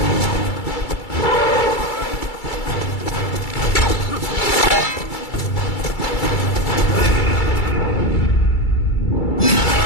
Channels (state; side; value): late; right; 2.3 ms